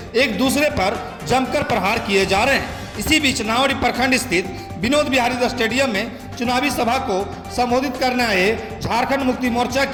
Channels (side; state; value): both; identical; correlation 1.00